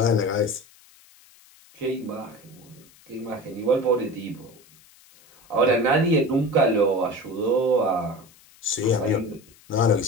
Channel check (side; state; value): left; noise; hiss, 27 dB below the sound